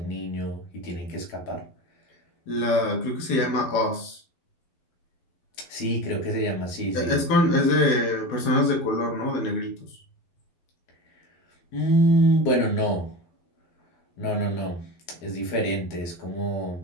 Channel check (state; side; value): late; right; 12 ms